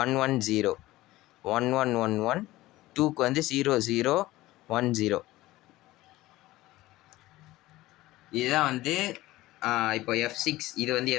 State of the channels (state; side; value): quieter; right; 17.5 dB